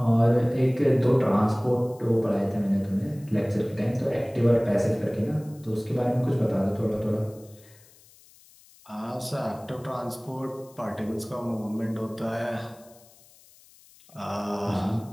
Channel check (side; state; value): left; noise; hiss, 26 dB below the sound